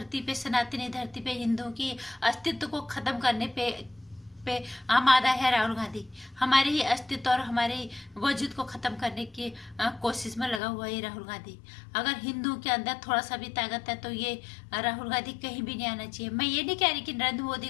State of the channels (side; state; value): right; drops out; at 10.6 s